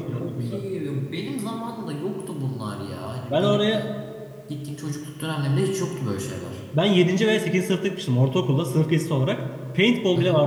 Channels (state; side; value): identical; both; correlation 1.00